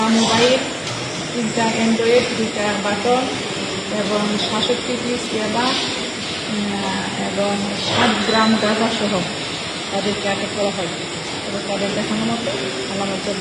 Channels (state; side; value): identical; both; correlation 1.00